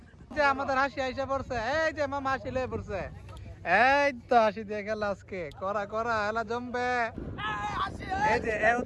যে আমাদের হাসি আইসা পড়ছে, এই যে মামা হাসি লয়ে পড়ছে, এই তো হাসি দিয়ে খেলা আজকে করা করা খেলা জমবে। এই যে এ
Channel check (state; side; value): identical; both; correlation 1.00